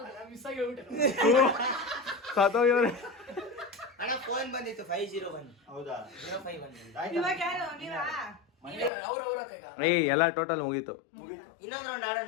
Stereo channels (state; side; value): drops out; right; at 8.9 s